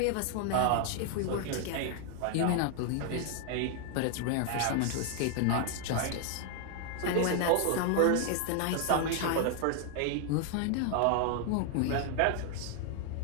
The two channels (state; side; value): different; both; correlation 0.00